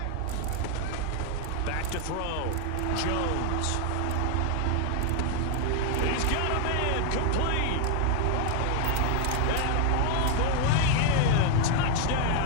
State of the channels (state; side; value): different; both; correlation 0.00